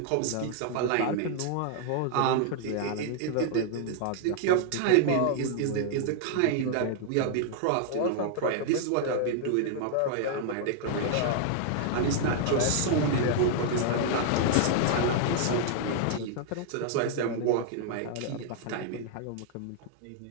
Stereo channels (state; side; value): different; both; correlation -0.01